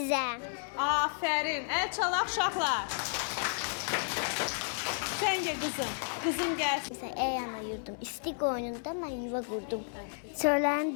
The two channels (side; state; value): right; silent; 56 dB below the other